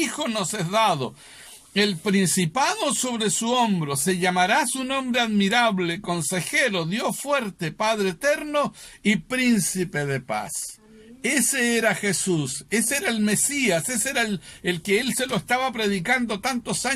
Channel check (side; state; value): both; identical; correlation 1.00